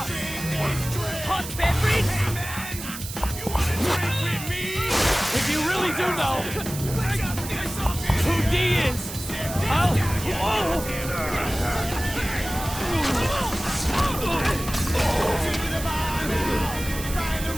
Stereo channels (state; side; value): noise; right; hiss, 10 dB below the sound